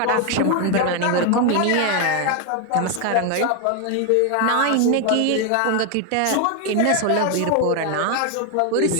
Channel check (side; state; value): both; different; correlation 0.01